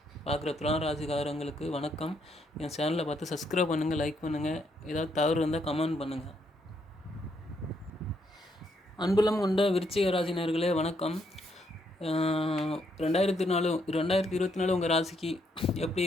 பார்க்குற துலாம் ராசிக்காரங்களுக்கு வணக்கம். என் சேனலை பார்த்து சப்ஸ்கிரைப் பண்ணுங்கள், லைக் பண்ணுங்கள். ஏதாவது தவறு இருந்தால் கமெண்ட் பண்ணுங்கள். அன்புலம் கொண்ட விருச்சிக ராசினர்களே வணக்கம். 2024 உங்கள் ராசிக்கு எப்படி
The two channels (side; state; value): both; normal; correlation 0.75